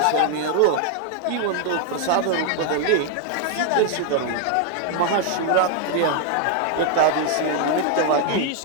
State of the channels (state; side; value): different; both; correlation 0.00